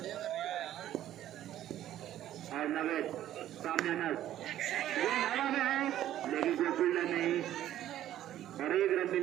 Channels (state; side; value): quieter; left; 12.4 dB